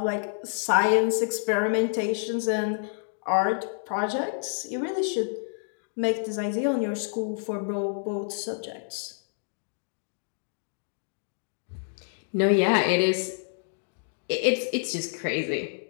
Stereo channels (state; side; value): silent; right; digital silence